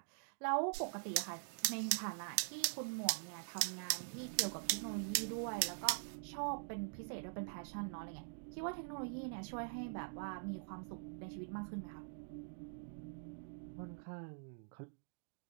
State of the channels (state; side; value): silent; left; digital silence